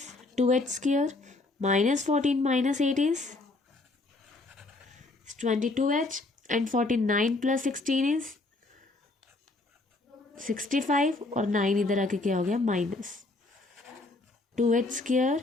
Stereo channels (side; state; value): right; quieter; 3.1 dB